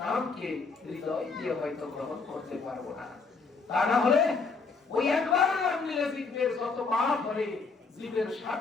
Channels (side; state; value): right; quieter; 4.5 dB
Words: নামকে হৃদয় দিয়ে হয়তো গ্রহণ করতে পারবো না। তা না হলে ওই একবার নাম নিলে জীবের যত পাপ করে, জীবের